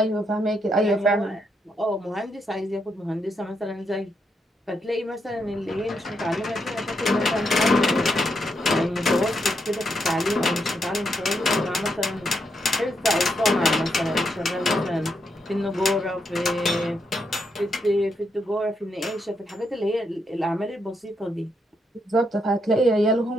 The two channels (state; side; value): normal; both; correlation 0.80